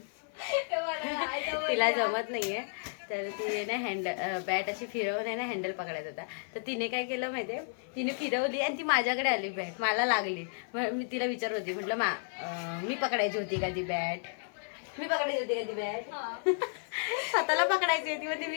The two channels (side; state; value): right; silent; 55 dB below the other